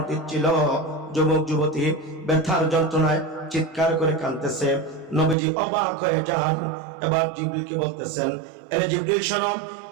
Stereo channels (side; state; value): left; drops out; at 5.4 s